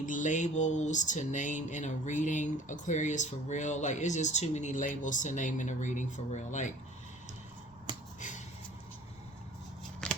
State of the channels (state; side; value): normal; both; correlation 0.48